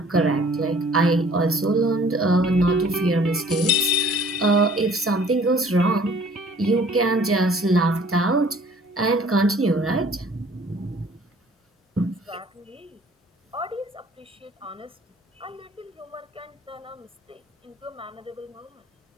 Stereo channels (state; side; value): normal; both; correlation 0.54